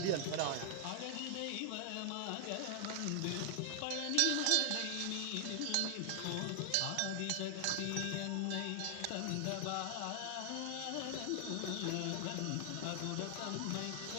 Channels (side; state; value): both; different; correlation 0.00